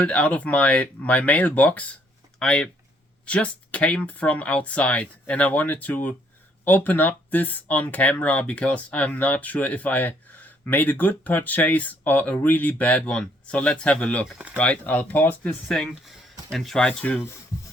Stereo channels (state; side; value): normal; both; correlation 0.68